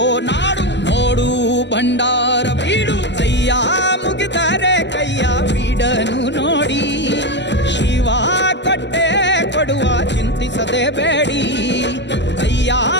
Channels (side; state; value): right; late; 0.51 ms